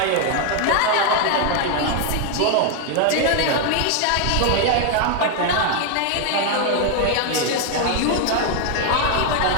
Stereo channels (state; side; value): different; both; correlation 0.00